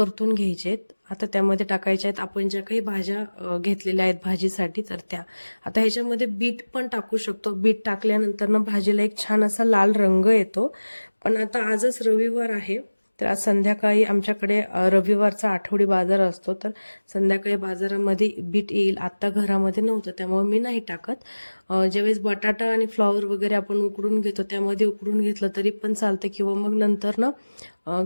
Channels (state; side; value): inverted; both; correlation -1.00